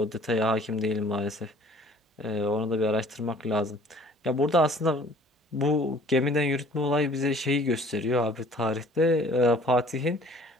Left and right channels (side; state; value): both; normal; correlation 0.52